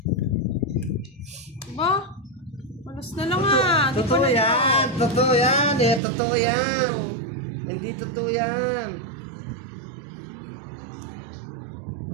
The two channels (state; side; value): drops out; left; at 6.0 s